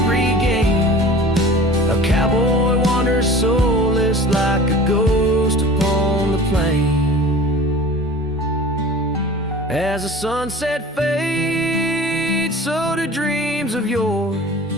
regain. A cowboy wanders soulless like a ghost upon the plain. As the sunset fades, so do dreams of yore.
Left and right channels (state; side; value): normal; both; correlation 0.40